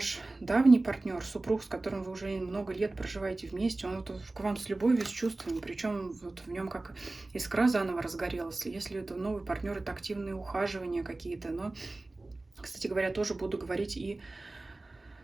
давний партнер, супруг, с которым вы уже много лет проживаете вместе, он вот к вам с любовью, с чувствами, причем вот в нем как искра заново разгорелась. Если это новый партнер, это активные ухаживания какие-то. Но, кстати говоря, тоже буду говорить и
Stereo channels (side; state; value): left; quieter; 3.0 dB